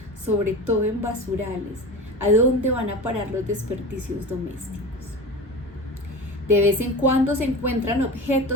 sobre todo en basurales, a dónde van a parar los desperdicios domésticos. De vez en cuando se encuentran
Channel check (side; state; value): both; normal; correlation 0.30